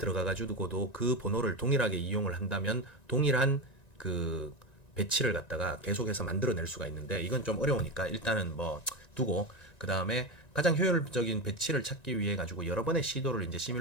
그 번호를 동일하게 이용을 한다면 동일한 그 배치를 갖다가 계속해서 만들어낼 수가 있는데 이건 좀 어려우니까 일단은 뭐 두고 그 다음에 가장 효율적인 배치를 찾기 위해 가지고 여러 번의 시도를 이제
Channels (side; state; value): right; late; 1.9 ms